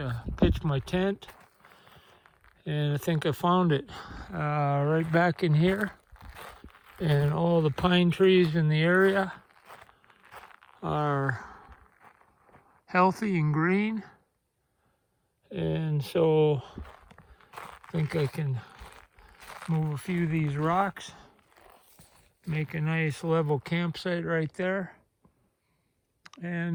pitch my tent, and I think I found it right back in here. And all the pine trees in the area are healthy and green, and so I think I can move a few of these rocks, make a nice level campsite right there,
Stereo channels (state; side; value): identical; both; correlation 1.00